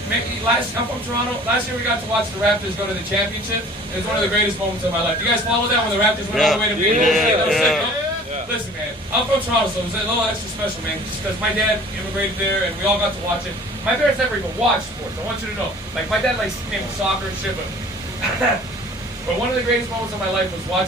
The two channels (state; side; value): normal; both; correlation 0.48